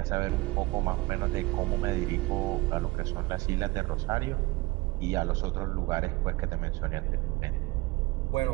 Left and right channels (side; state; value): left; quieter; 22.1 dB